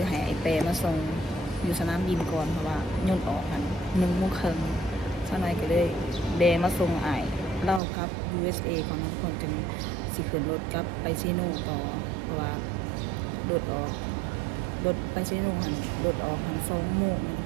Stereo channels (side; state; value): left; drops out; at 7.8 s